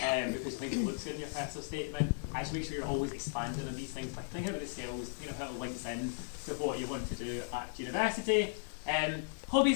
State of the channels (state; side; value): silent; right; digital silence